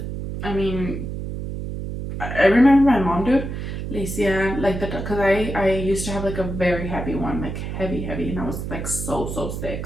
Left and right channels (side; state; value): right; noise; hum, 6 dB below the sound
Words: I mean, I remember my mom, dude, Licia, like because I used to have like a very heavy one, like heavy, and I was like so sick.